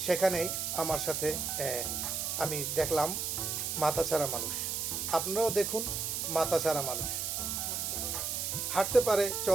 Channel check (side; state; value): right; noise; hiss, 1 dB below the sound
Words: সেখানেই আমার সাথে আমি দেখলাম মাথা ছাড়া মানুষ। আপনারাও দেখুন মাথা ছাড়া মানুষ। হাঁটতে পারে,